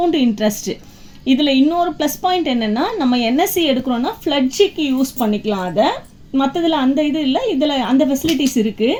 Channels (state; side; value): identical; both; correlation 1.00